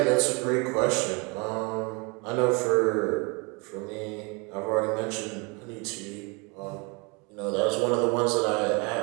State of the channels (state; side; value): quieter; left; 30.3 dB